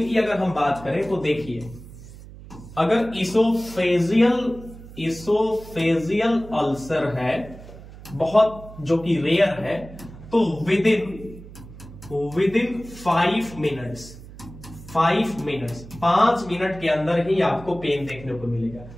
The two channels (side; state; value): right; noise; hum, 17 dB below the sound